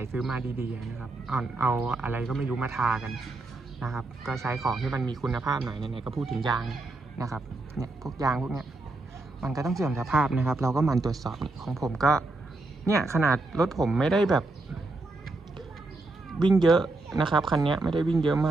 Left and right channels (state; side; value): quieter; left; 3.1 dB